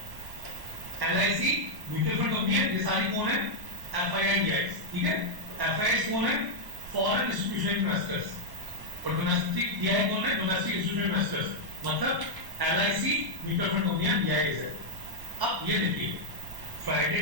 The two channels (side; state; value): left; late; 1.1 ms